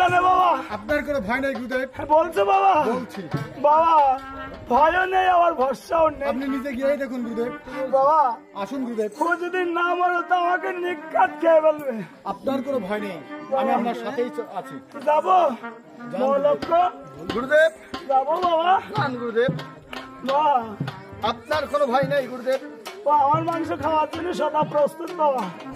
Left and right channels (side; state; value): both; identical; correlation 1.00